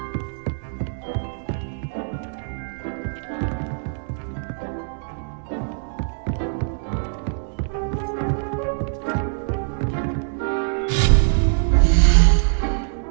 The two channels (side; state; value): left; silent; digital silence